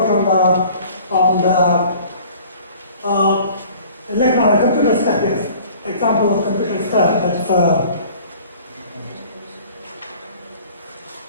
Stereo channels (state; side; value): inverted; both; correlation -0.49